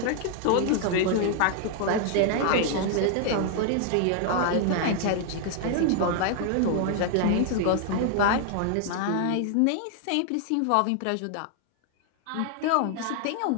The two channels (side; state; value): both; different; correlation 0.00